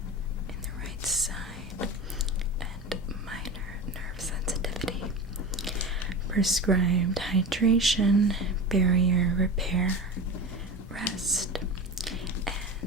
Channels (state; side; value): normal; both; correlation 0.28